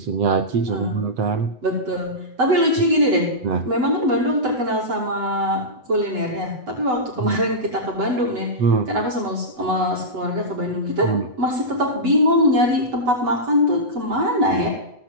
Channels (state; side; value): late; left; 8.0 ms